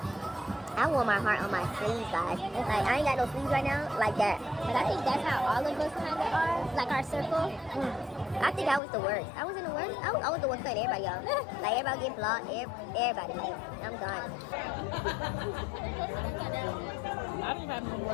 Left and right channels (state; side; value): drops out; right; at 8.8 s